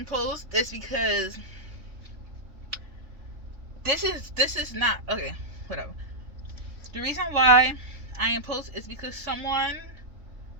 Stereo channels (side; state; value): left; late; 3.4 ms